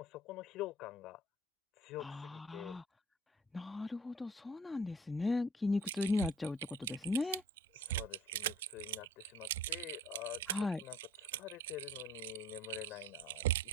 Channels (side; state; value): both; normal; correlation 0.49